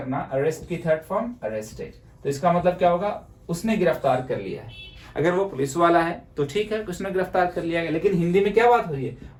अरेस्ट की थर्ड फॉर्म अरेस्टेड, तो इसका मतलब क्या होगा, उसने गिरफ्तार कर लिया है। अगर वो पुलिस वाला है तो ठीक है, उसने गिरफ्तार कर लिया गया। लेकिन हिंदी में क्या बात हो रही है,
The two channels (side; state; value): both; identical; correlation 1.00